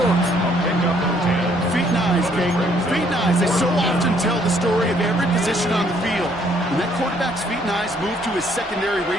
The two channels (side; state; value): both; normal; correlation 0.66